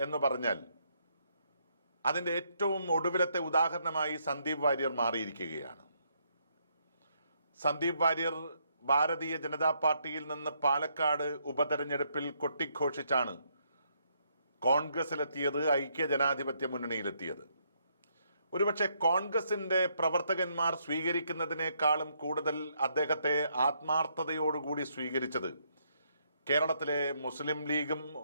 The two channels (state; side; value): inverted; both; correlation -0.74